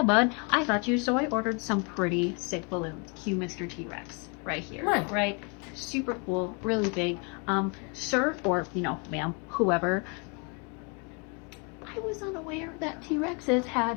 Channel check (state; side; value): quieter; right; 33.7 dB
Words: bud. I thought you." So I ordered some pretty sick balloons. Cue Mr. T-Rex right here. Right? Super cool, really big. Sir, or, you know, ma'am, whoever, I was unaware that T-Rexes had